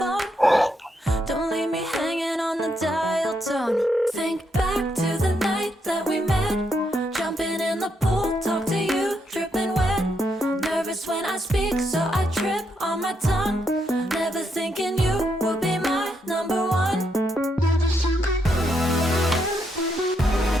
Don't leave me hanging on the dial tone. Think back to the night that we met. Jumping in the pool, talk to you, dripping wet. Nervous when I speak, so I trip on my tongue. Never thinking you would be my number one.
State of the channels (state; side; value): normal; both; correlation 0.79